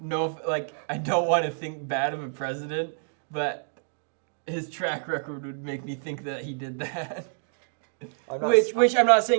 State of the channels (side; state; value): left; silent; digital silence